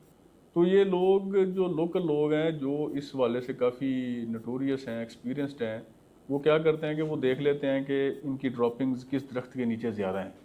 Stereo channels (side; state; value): both; identical; correlation 1.00